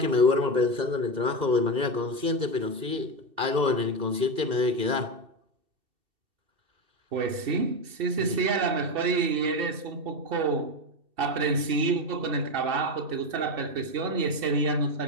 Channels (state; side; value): late; left; 2.6 ms